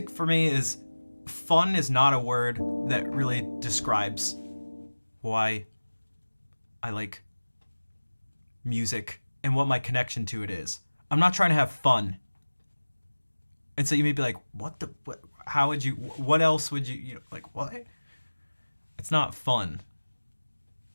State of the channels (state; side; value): inverted; both; correlation -1.00